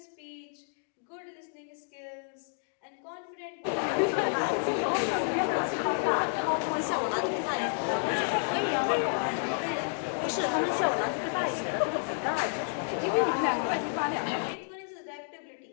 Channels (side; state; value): right; silent; digital silence